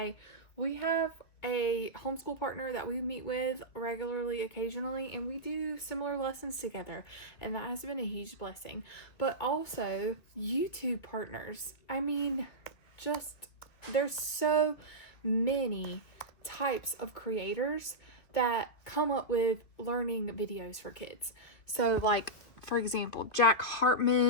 We have a homeschool partner that we meet with regularly, occasionally, and we do similar lessons together, and that has been a huge blessing. But also YouTube partners. I mean, there's so many types of creators that come up with learning videos for kids. So like, for example, Jack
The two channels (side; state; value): right; late; 2.5 ms